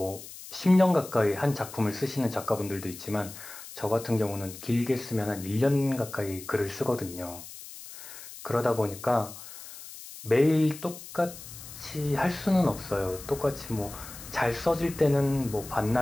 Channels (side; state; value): left; noise; hiss, 14 dB below the sound